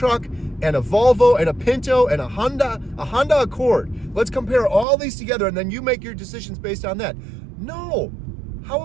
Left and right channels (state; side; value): drops out; left; at 4.9 s